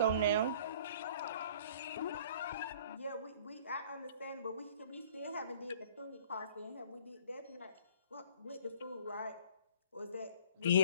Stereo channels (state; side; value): inverted; both; correlation -0.52